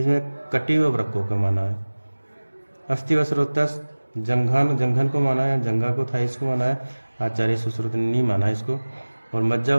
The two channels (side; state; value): both; inverted; correlation -1.00